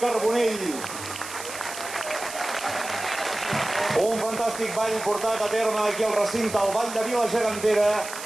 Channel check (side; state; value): right; noise; hiss, 10 dB below the sound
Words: Un fantàstic ball portat a terme aquí al recinte, el Ball de Vila Gegantera,